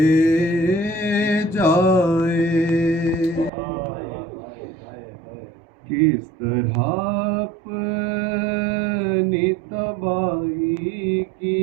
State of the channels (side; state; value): left; drops out; at 3.5 s